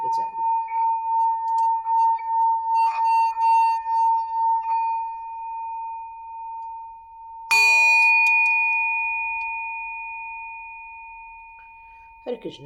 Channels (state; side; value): identical; both; correlation 1.00